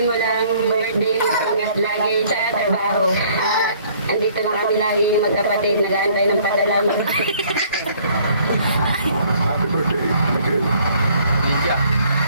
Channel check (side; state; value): both; inverted; correlation -0.59